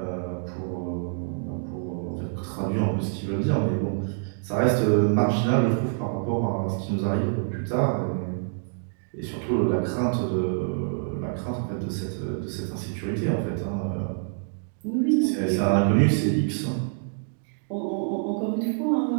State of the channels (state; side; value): silent; left; digital silence